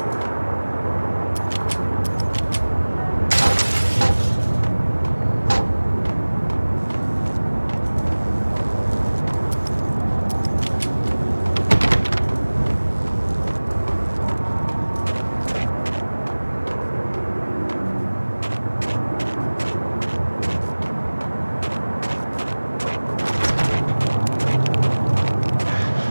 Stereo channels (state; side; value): inverted; both; correlation -1.00